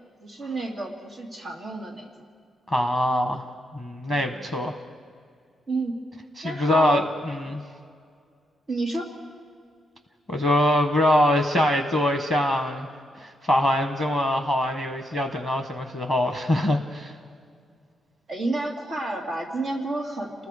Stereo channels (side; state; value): both; normal; correlation 0.79